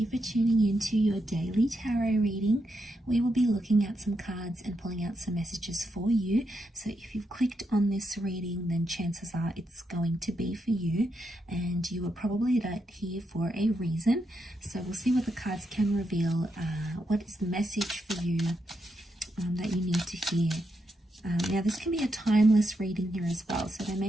for tuning in to your daily tarot reading. We will be looking at some cards and pulling out some messages for you. So if you've clicked on this reading, then chances are it's going to be for you, and you were probably here for a reason. So we'll see what the cards can reveal. What is the message for you that you need to hear? Now this can be a timeless reading here as well, so there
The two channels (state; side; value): normal; both; correlation 0.82